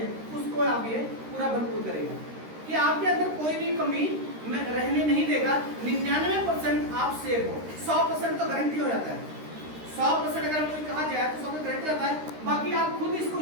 है, उसको आप ये पूरा भरपूर करेगा कि आपके अंदर कोई भी कमी रहने नहीं देगा। 99% आप सेफ हो, 100% तो गारंटी हो जाता है। 100% अगर कोई कहा जाए तो 100% गारंटी होता है। बाकी आप खुद इसको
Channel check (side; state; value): left; late; 13 ms